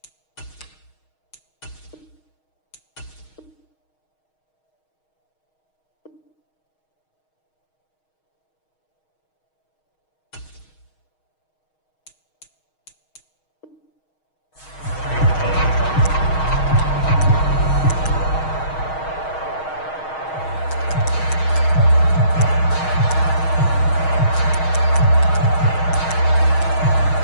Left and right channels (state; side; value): late; right; 6.4 ms